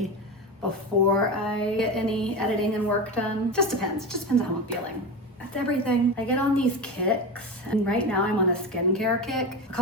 before I get any editing and work done. Just depends on how I'm feeling. That's everything. I get on these kicks, and right now I'm on a skincare kick. A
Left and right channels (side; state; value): both; normal; correlation 0.22